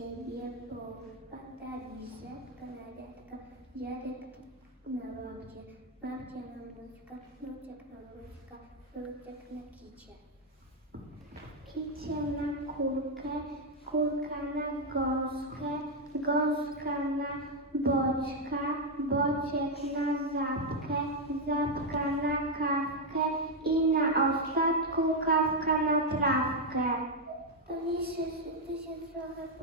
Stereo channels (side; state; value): both; normal; correlation 0.03